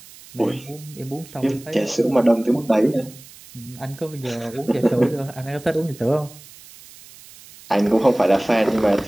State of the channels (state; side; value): noise; right; hiss, 21 dB below the sound